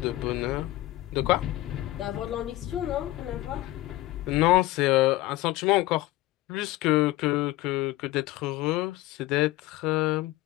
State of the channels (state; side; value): quieter; right; 17.4 dB